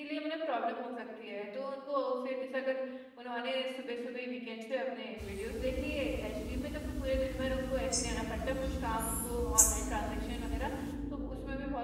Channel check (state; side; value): identical; both; correlation 1.00